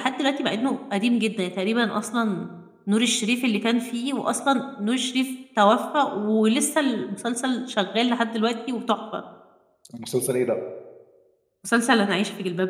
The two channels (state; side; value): identical; both; correlation 1.00